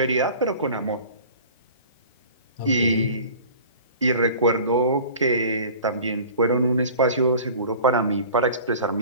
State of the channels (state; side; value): inverted; both; correlation -0.43